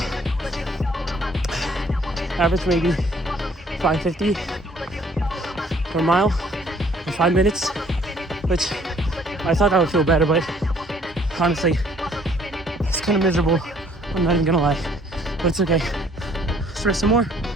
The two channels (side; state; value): both; normal; correlation 0.60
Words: average maybe 550 per mile in 5 minutes, which I thought that would feel better, but honestly, it's kind of miserable. I'm not even gonna lie, but it's okay. Let's rest some more.